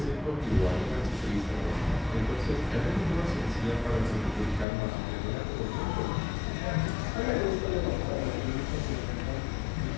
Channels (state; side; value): drops out; right; at 4.7 s